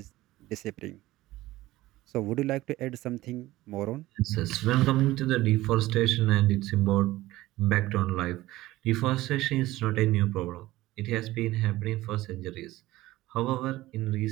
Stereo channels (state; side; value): quieter; left; 17.2 dB